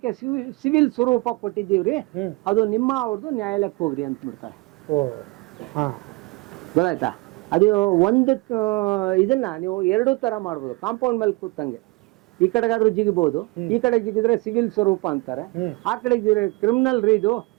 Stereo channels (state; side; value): quieter; left; 24.4 dB